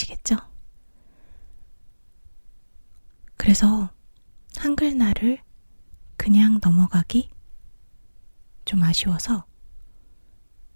그래서 한글날을 그냥 넘어가기 좀 아쉬워서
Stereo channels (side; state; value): both; inverted; correlation -1.00